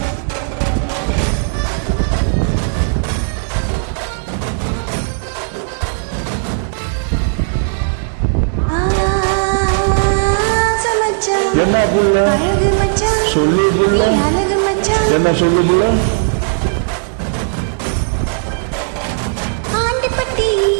என்ன புள்ள அழகு மச்சான் சொல்லு புள்ள அழகு மச்சான் என்ன சொல்லு புள்ள ஆண்டிப்பட்டி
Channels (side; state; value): left; silent; digital silence